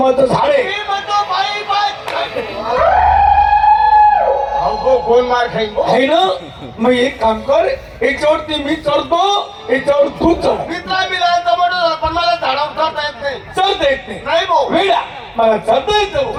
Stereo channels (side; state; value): both; identical; correlation 1.00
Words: झाड आहे. मी म्हणतो पाईप कोण मार खाईन आहे ना. मग एक काम कर, याच्यावरती मी चढतो, याच्यावर तू चढ. मित्रा मिळाला पण मला झाडावर चढता येत नाही. चढता येत नाही भाऊ. वेळा मला चढता येतं.